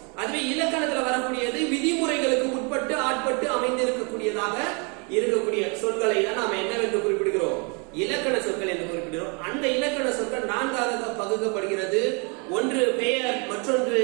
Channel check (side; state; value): left; quieter; 33.6 dB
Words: அதுவே இலக்கணத்துல வரக்கூடியது விதிமுறைகளுக்கு உட்பட்டு ஆட்பட்டு அமைந்திருக்கக்கூடியதாக இருக்கக்கூடிய சொற்களை தான் நாம என்னவென்று குறிப்பிடுகிறோம்? இலக்கண சொற்கள் என்று குறிப்பிடுகிறோம். அந்த இலக்கண சொற்கள் நான்காக பகுக்கப்படுகிறது. ஒன்று பெயர், மற்றொன்று